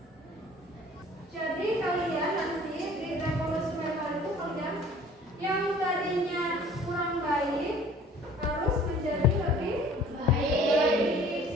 Jadi kalian nanti di revolusi mental itu kalian yang tadinya kurang baik harus menjadi lebih baik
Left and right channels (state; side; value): normal; both; correlation 0.50